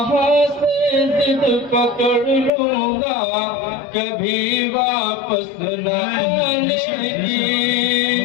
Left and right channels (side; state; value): right; drops out; at 2.5 s